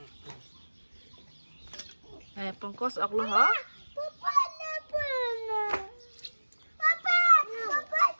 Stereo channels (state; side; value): inverted; both; correlation -1.00